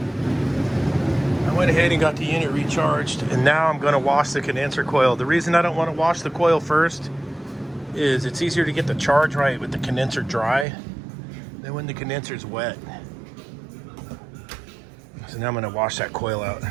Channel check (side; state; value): left; drops out; at 10.7 s